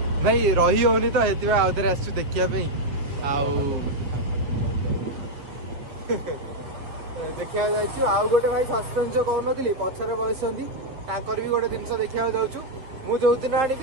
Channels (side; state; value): left; late; 7.2 ms